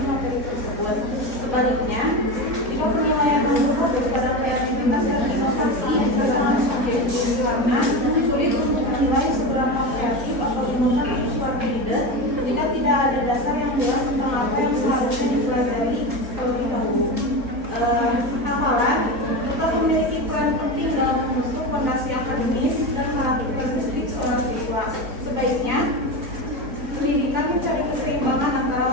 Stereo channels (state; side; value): late; left; 3.6 ms